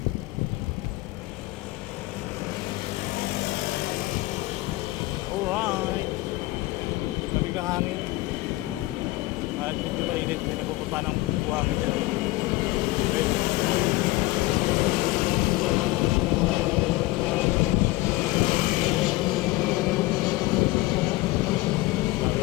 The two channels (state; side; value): quieter; right; 19.7 dB